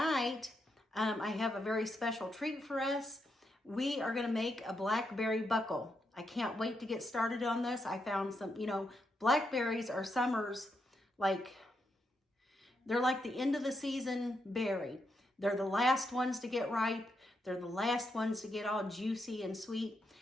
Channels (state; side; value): normal; both; correlation 0.82